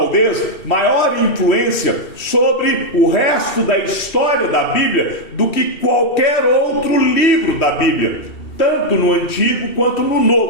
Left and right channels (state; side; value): late; right; 2.7 ms